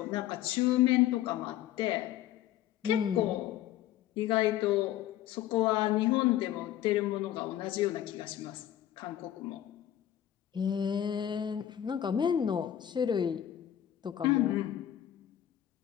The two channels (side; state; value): right; quieter; 11.8 dB